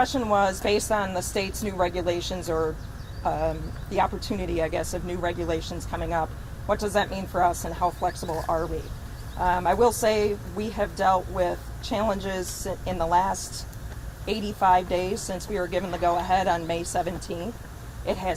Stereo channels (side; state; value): both; identical; correlation 1.00